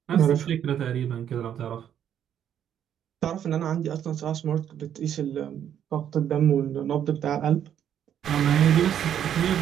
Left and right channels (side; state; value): left; quieter; 9.6 dB